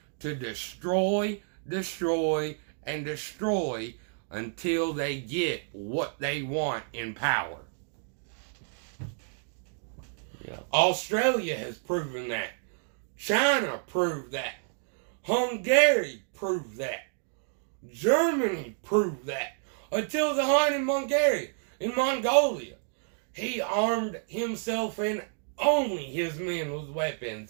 to destroy, and destroy until they get what they want in power. Yeah. Australia has proven that. China proved that. Hungary proved that. Germany proved that. Until the Hun in Mongolia. He armed himself and only his men with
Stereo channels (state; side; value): silent; left; 58 dB below the other